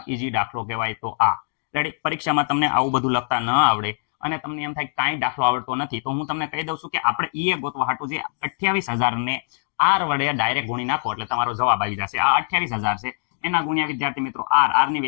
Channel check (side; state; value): right; silent; digital silence